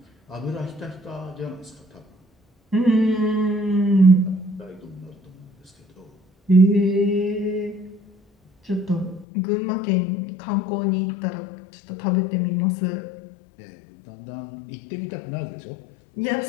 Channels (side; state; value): right; drops out; at 9.2 s